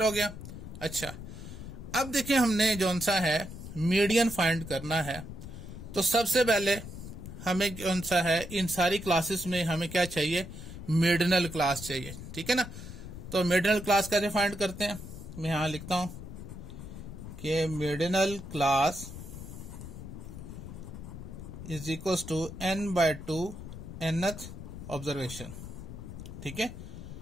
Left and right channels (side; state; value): left; noise; rumble, 12 dB below the sound